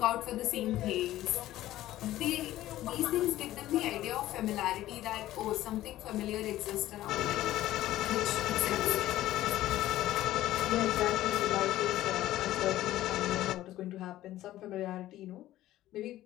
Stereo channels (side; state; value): right; quieter; 14.6 dB